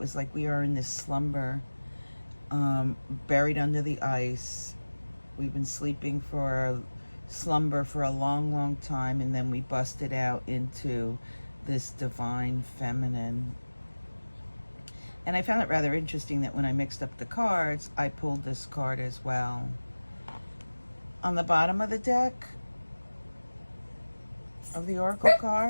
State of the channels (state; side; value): inverted; both; correlation -1.00